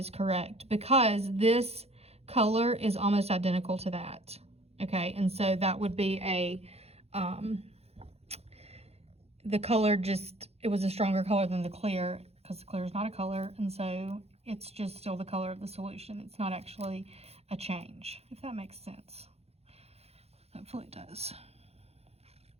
correct, because this color is almost identical to that. Okay, and so that would be a, the color just, it was a stronger color than the clear, because the clear is not a color, and so it's just still the color of the solution. It's not actually a change, if that makes sense. Hopefully it does.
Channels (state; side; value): late; left; 0.30 ms